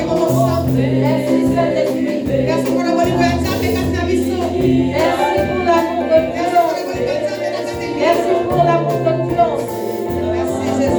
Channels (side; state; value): both; identical; correlation 1.00